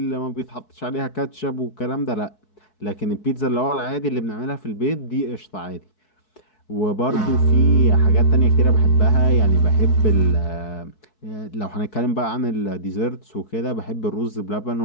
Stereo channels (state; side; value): late; right; 4.6 ms